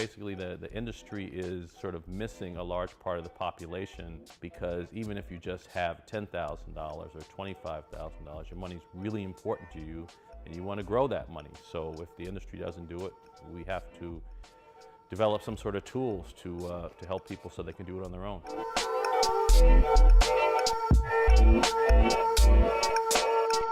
the industry is sort of missing a large part of the population, because even if you just have $10,000 or $25,000, your money's really important to you and you want to grow that money. So if the industry doesn't do it, we have to develop some sort of tools to help people so they can do it on their own.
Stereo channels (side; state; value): both; identical; correlation 1.00